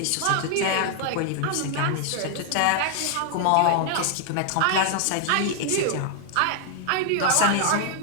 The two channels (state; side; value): different; both; correlation 0.00